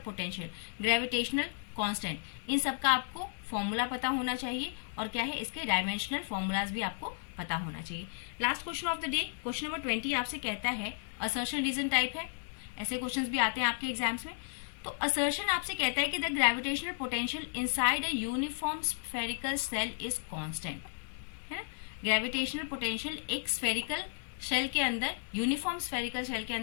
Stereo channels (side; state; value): right; silent; digital silence